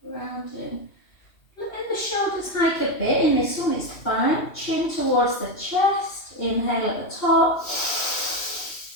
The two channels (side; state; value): right; late; 2.7 ms